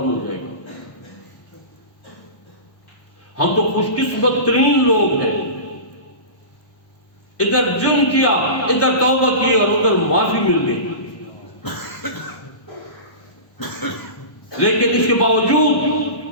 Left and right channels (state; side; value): late; right; 1.2 ms